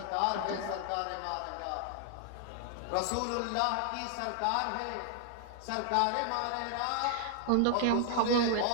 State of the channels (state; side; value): different; both; correlation 0.00